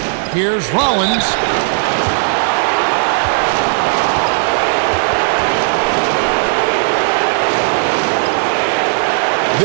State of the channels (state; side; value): silent; left; digital silence